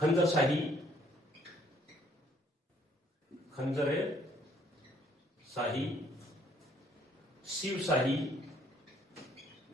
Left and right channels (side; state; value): both; normal; correlation 0.64